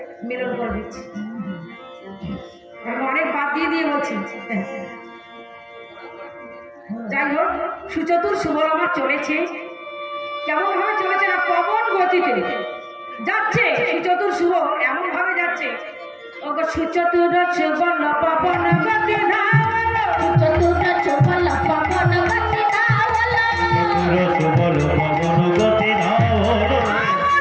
মিলন করে দিচ্ছি। আমি অনেক বাদ দিয়ে বলছি। যাই হোক, সুচতুর সুবল আমার চলেছে। কেমন ভাবে চলেছে না, পবন গতিতে যাচ্ছে সুচতুর সুবল, এমন ভাবে যাচ্ছে। ওগো সুচতুর সুবল পবন গতি ধাওলো, চতুর্থ চোপল পবন গতি ধাওলো, সুবল পবন গতি ধাওলো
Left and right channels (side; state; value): both; identical; correlation 1.00